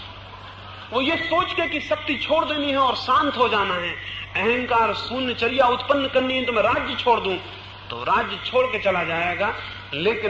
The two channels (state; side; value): identical; both; correlation 1.00